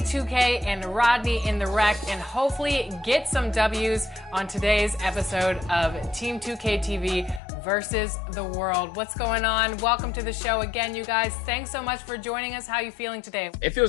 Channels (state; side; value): drops out; right; at 7.4 s